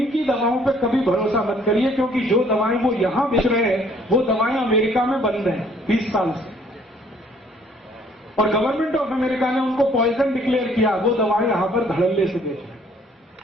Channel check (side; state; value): both; normal; correlation 0.60